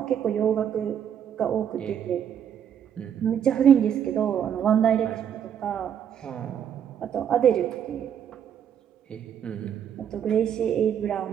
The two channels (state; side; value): quieter; left; 8.9 dB